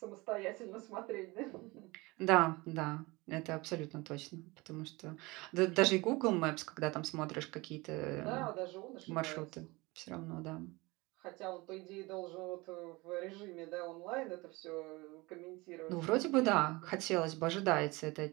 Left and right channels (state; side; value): quieter; left; 23.4 dB